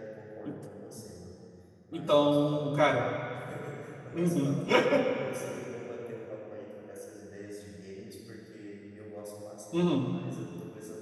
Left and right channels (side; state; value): both; identical; correlation 1.00